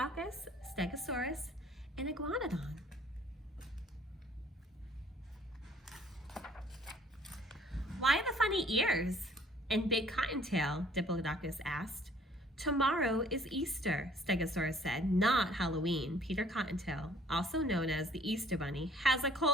Stegosaurus, and Iguanodon. "Why the funny ears and big cottontail?" Diplodocus asked. "Tomorrow is Easter," Stegosaurus said, "not Halloween. Peter Cottontail, also known as the Easter Bunny, has a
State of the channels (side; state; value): both; normal; correlation 0.57